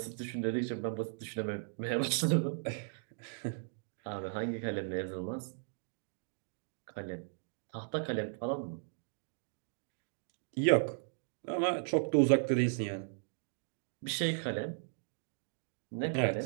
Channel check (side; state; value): left; silent; digital silence